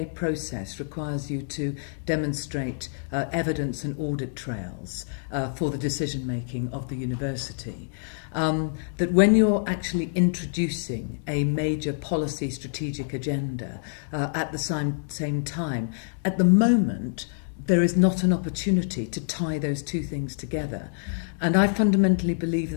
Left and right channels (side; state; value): right; silent; digital silence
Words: process requires you to demonstrate evidence and audit trails for the decision-making of the university, that when you're actually introducing a major policy strategic agenda at the same time, at the moment, there is not an opportunity to tie those two things together. And I fundamentally believe